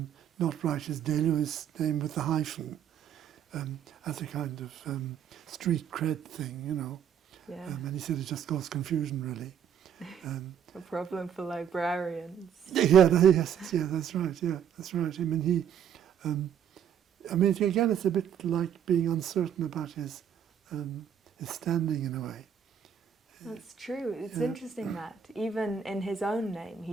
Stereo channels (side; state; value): left; quieter; 8.5 dB